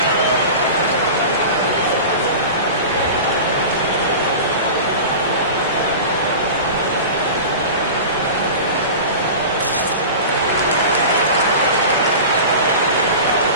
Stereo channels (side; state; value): both; inverted; correlation -0.32